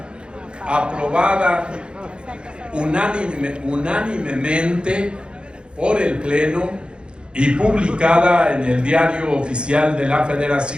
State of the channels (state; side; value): late; left; 0.053 ms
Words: aprobada unánimemente por el Pleno y publicada en el Diario Oficial de la